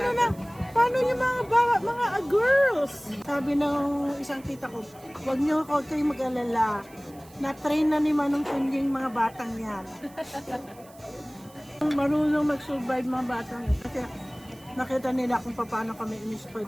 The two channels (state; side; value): noise; right; hiss, 25 dB below the sound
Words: na, paano yung mga girls? Sabi ng isang tita ko, huwag niyo kayong mag-alala, na-train na ni Manong Kunying mga batang yan. Marunong mag-survive mga batang yan. Kasi nakita nila kung paano kami in-spoil